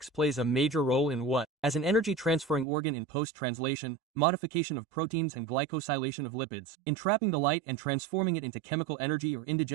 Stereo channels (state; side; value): drops out; left; at 2.7 s